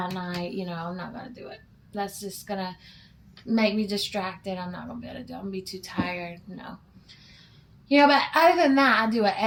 night. I'm not gonna do it. That's just gonna make me distracted. I'm not gonna be able to do it. I'm gonna be too tired. No. But other than that, I do it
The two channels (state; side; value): identical; both; correlation 1.00